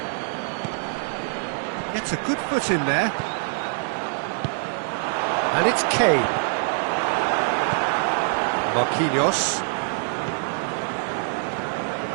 Gets a good foot in there. And it's Kane. Marquinhos.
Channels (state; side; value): silent; left; 62 dB below the other